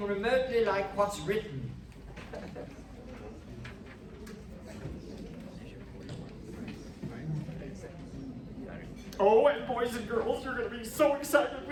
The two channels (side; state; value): both; identical; correlation 1.00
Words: remotely like what's written. Oh, and boys and girls, you're going to be so excited